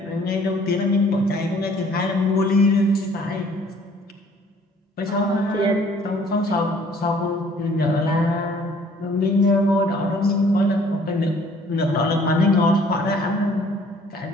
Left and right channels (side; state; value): both; normal; correlation 0.57